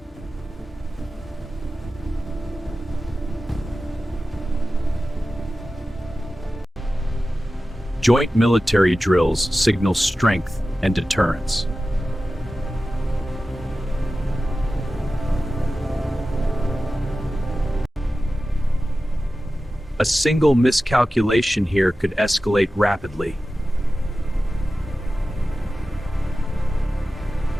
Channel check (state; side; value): normal; both; correlation 0.94